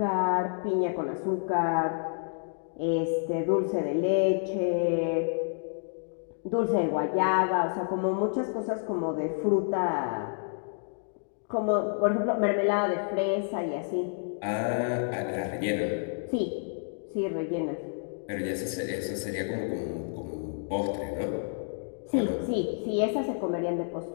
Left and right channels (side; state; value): right; silent; digital silence